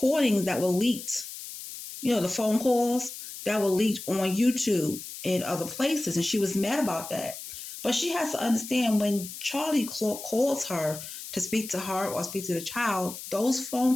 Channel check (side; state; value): left; noise; hiss, 11 dB below the sound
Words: that were leaked, the phone calls that were leaked on YouTube and other places, and she was mad about that. But she has to understand when Charlie calls her to speak to her or speak to the child, those